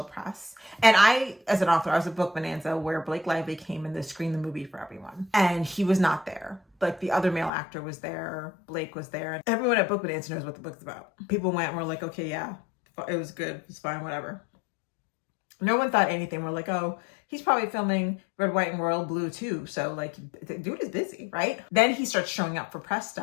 press. And I, as an author, I was at Book Bonanza where Blake Lively came in to screen the movie for everyone. And he was not there. Like the other male actor was there. Blake was there. And everyone at Book Bonanza knows what the book's about. People went and were like, okay, yeah, it was good. It's fine, whatever. No one thought anything. We're like, oh, he's probably filming Red, White, and Royal Blue too. So like, the dude is busy, right? Then he starts showing up for press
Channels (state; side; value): drops out; right; at 7.5 s